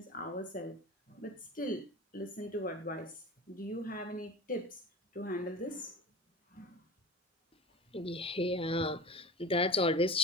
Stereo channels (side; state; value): both; normal; correlation 0.34